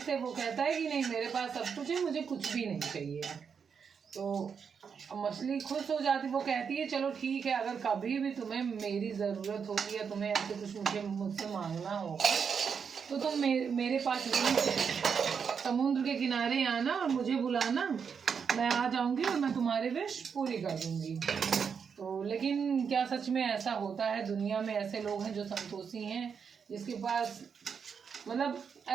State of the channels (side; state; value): left; quieter; 6.5 dB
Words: से वो कहता है कि नहीं, मेरे पास सब कुछ है, मुझे कुछ भी नहीं चाहिए। तो मछली खुश हो जाती, वो कहती है चलो ठीक है, अगर कभी भी तुम्हें मेरी ज़रूरत होगी या तुम्हें ऐसे कुछ मुझसे मांगना होगा तो तुम मेरे पास समुद्र के किनारे आना और मुझे बुलाना, मैं आ जाऊंगी और मैं तुम्हारी विश पूरी कर दूंगी। तो लेकिन क्या सच में ऐसा होता है? दुनिया में ऐसे लोग हैं जो संतोषी हैं, जिसके पास मतलब